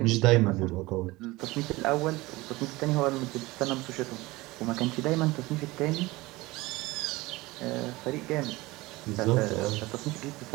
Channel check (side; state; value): left; quieter; 20.7 dB